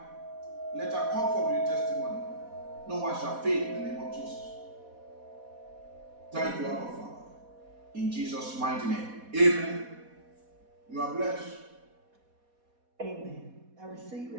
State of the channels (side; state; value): left; late; 4.1 ms